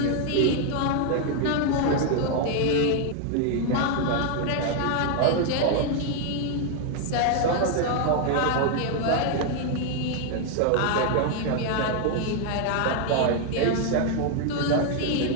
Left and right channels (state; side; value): different; both; correlation 0.00